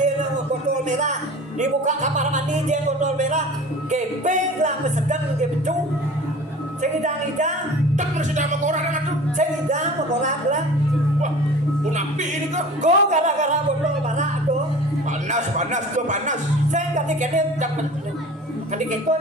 botol merah dibuka kamar mandi jen botol merah kepeng lah mesegan ke becu segidang-idang Tak bersedia sama orang dengan tuh. segidang memorak lah Wah, punapi ini kok. go gara-gara botol merah tuh Panas, panas tuh panas. saya kadang-kadang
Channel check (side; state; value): both; normal; correlation 0.41